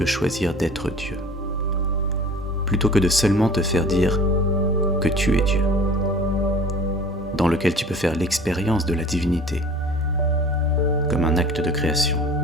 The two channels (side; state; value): both; normal; correlation 0.44